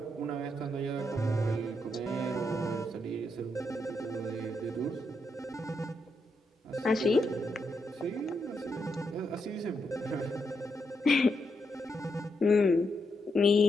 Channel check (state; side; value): normal; both; correlation 0.81